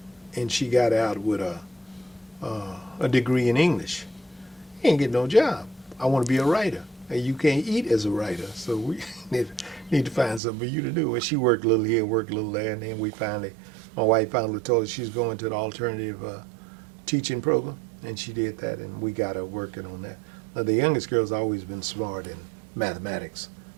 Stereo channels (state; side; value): drops out; left; at 10.4 s